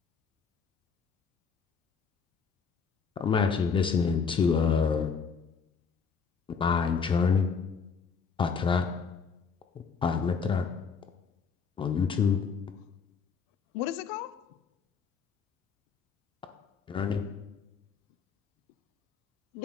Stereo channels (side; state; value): right; quieter; 5.7 dB